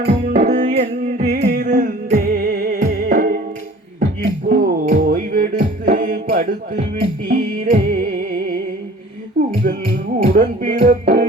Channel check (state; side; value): normal; both; correlation 0.47